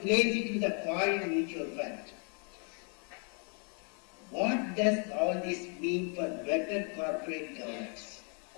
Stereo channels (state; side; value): quieter; right; 39.5 dB